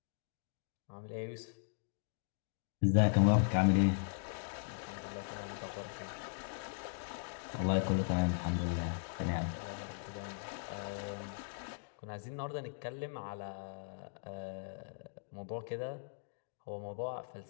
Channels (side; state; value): right; silent; digital silence